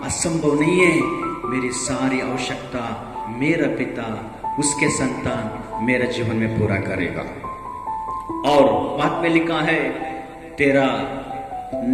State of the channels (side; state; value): both; identical; correlation 1.00